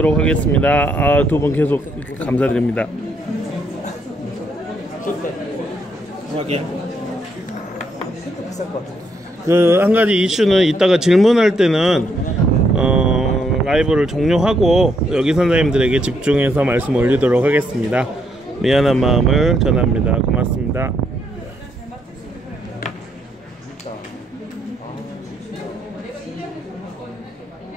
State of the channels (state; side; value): normal; both; correlation 0.74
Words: 하겠습니다. 두 분 계속 감사드립니다. 한 가지 이슈는 이따가 질문할 때는 라이브를 종료하고 여기 선생님들에게 집중해서 말씀 올리도록 하겠습니다. 미안한 마음을 전합니다. 고맙습니다.